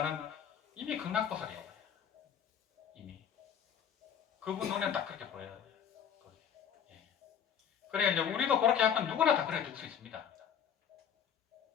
이미 극락보살이에요. 이미. 그분 눈에는 딱 그렇게 보여요. 예. 그러니까 이제 우리도 그렇게 하면 누구나 다 그렇게 될 수 있습니다.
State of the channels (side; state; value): right; quieter; 8.3 dB